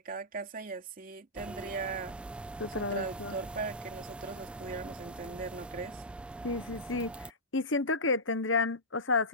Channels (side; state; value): both; normal; correlation -0.12